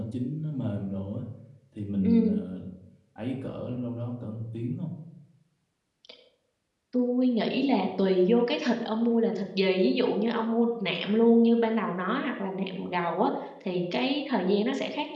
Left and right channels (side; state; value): both; identical; correlation 1.00